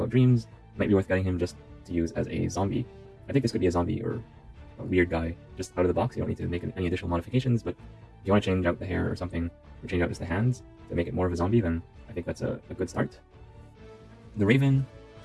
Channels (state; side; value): identical; both; correlation 1.00